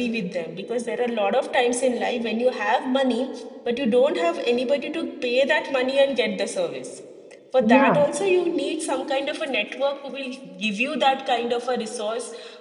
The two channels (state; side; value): identical; both; correlation 1.00